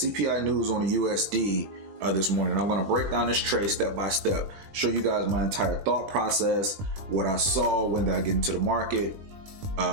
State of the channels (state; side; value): late; left; 20 ms